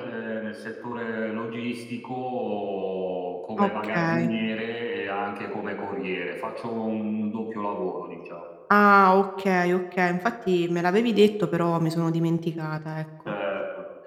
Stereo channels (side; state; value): both; identical; correlation 1.00